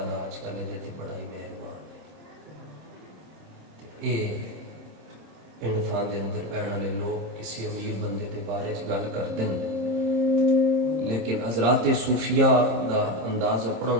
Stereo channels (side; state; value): left; late; 26 ms